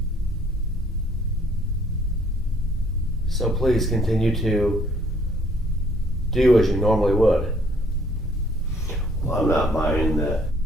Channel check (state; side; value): normal; both; correlation 0.62